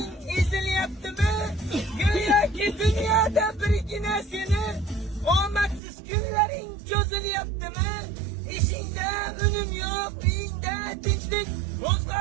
ezilyaptimi? Go'yoki dunyoda birgina seni omadsiz kunlaring cho'zilyaptimi? Ishingda unum yo'q, uyingda tinchlik,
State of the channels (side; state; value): left; drops out; at 5.8 s